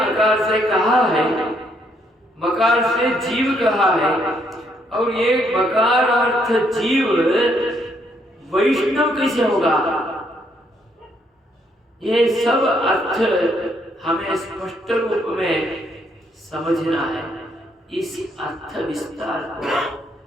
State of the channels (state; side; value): normal; both; correlation 0.72